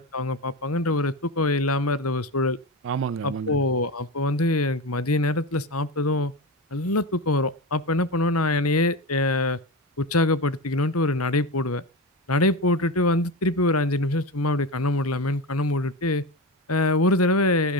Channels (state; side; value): normal; both; correlation 0.21